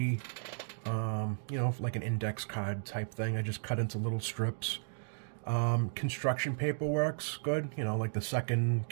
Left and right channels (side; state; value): left; silent; digital silence